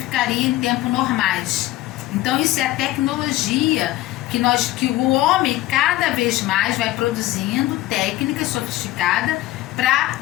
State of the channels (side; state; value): right; quieter; 16.2 dB